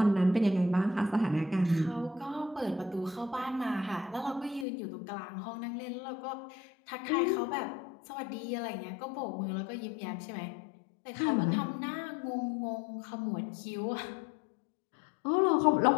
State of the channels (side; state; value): right; drops out; at 4.7 s